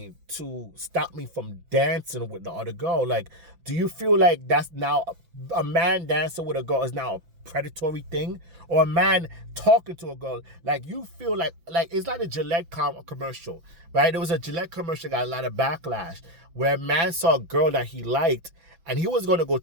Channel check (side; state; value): left; late; 6.0 ms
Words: to stop me from dancing with the other girl? Like, do you feel like that's now a man dancing with a girl is now a predatory thing? Or a man talking to a girl? Like, you feel like it's like a Gillette commercial, right? There was a Gillette commercial that got a lot of backlash where a man saw a girl that he liked and he was going to go